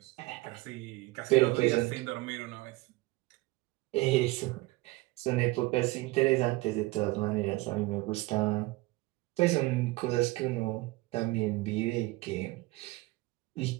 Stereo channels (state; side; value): quieter; left; 20.8 dB